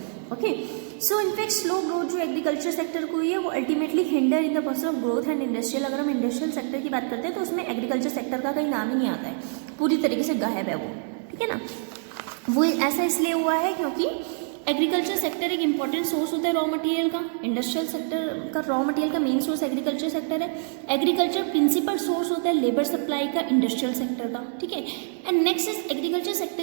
Okay, so in fact slow growth जो एग्रीकल्चर सेक्टर को हुई है वो ultimately hinder in the process of growth and industrial. अगर हम industrial sector की बात करते हैं तो उसमें एग्रीकल्चर सेक्टर का कहीं नाम ही नहीं आता है, पूरी तरीके से गायब है वो. ठीक है ना. वो ऐसा इसलिए हुआ है क्योंकि एग्रीकल्चर सेक्टर एक इंपॉर्टेंट सोर्स होता है रॉ मटेरियल का, इंडस्ट्रियल सेक्टर का रॉ मटेरियल का मेन सोर्स एग्रीकल्चर सेक्टर है। एग्रीकल्चर प्रिंसिपल सोर्स होता है लेबर सप्लाई का इंडस्ट्रियल सेक्टर का, ठीक है। And next is agriculture sector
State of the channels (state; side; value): silent; left; digital silence